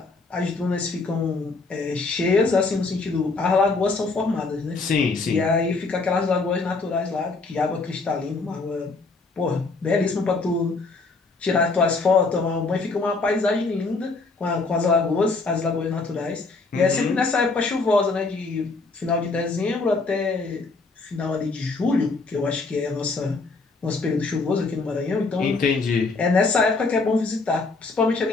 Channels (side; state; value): right; quieter; 3.8 dB